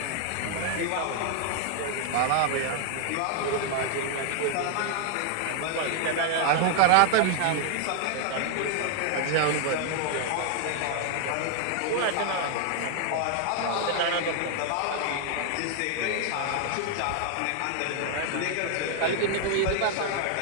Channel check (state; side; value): different; both; correlation 0.00